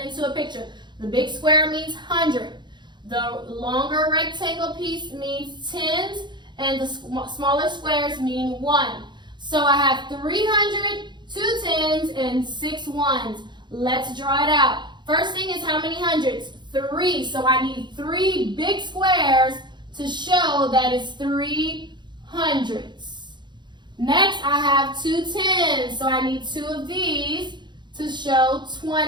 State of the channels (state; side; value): late; left; 0.22 ms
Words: into a picture. The big square means 100. The longer rectangle piece means tens, and the smaller squares mean 1. So I have 300, 2 tens, and 6 ones. Let's draw it out. First thing is how many hundreds? 3. So I need 3 big squares to show that it's 3 hundredths. Next, I have 2 tens. So I need 2 of these to show